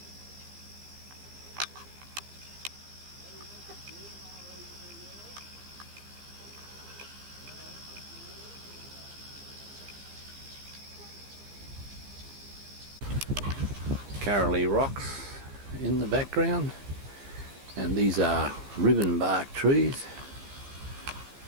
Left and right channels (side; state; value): left; late; 15 ms